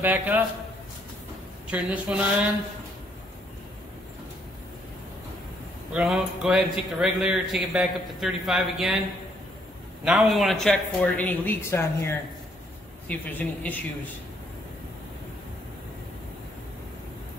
up. Turn this one on. We're going to go ahead and take the regulator, take it back up to 35 again. Now we want to check for any leaks on here, see if there's any issues.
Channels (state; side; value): normal; both; correlation 0.68